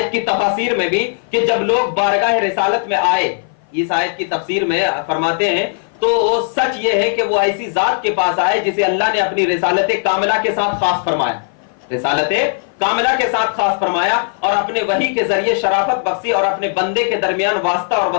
کی تفاسیر میں بھی کہ جب لوگ بارگاہ رسالت میں آئے, اس آیت کی تفسیر میں فرماتے ہیں تو سچ یہ ہے کہ وہ ایسی ذات کے پاس آئے جسے اللہ نے اپنی رسالت کاملہ کے ساتھ خاص فرمایا, رسالت کاملہ کے ساتھ خاص فرمایا اور اپنے وحی کے ذریعے شرافت بخشی اور اپنے بندے کے درمیان واسطہ اور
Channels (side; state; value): right; silent; 56 dB below the other